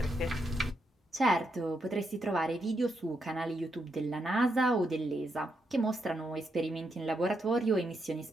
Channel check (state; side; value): normal; both; correlation 0.81